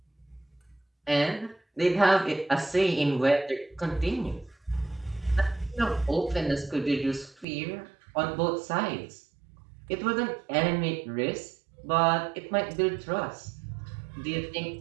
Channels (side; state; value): left; drops out; at 7.5 s